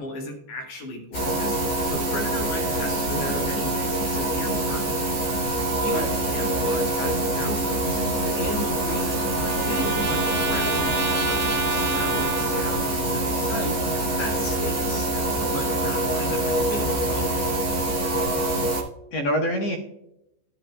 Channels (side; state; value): right; late; 14 ms